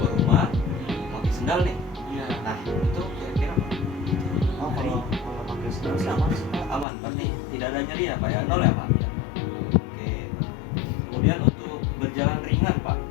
rumah, memakai sendal nih. Iya. Nah, itu kira-kira Pak? Oh, kalau pakai sendal sih aman sih Pak. Aman, berarti tidak ada nyeri ya Pak ya? Nol ya Pak? Iya. Oke. Kemudian untuk berjalan ringan Pak,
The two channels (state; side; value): drops out; right; at 6.9 s